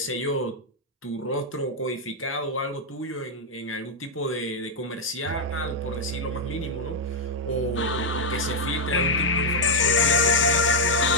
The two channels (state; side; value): normal; both; correlation -0.01